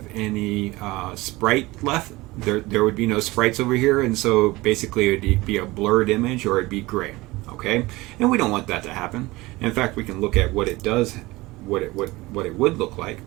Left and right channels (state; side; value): quieter; left; 20.8 dB